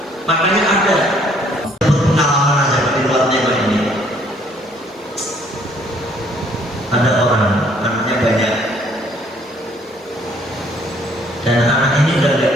makanya ada pengalaman aja di luar tema ini. Ada orang anaknya banyak dan anak ini udah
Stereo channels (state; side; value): normal; both; correlation 0.63